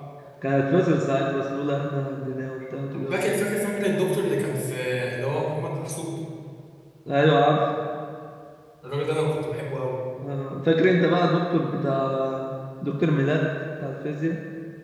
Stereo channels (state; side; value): identical; both; correlation 1.00